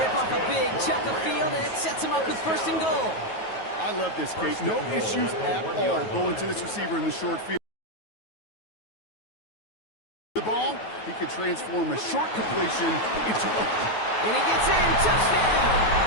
off a big chunk of field, and it sets them up with first and goal. I love this, Kate. No issues at all going to this receiver in the short field. The ball, he could transform a short completion into a... And he gets in. Touchdown!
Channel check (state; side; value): late; right; 9.3 ms